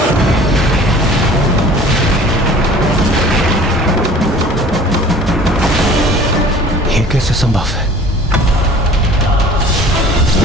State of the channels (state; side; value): normal; both; correlation 0.47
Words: ये कैसे संभव है?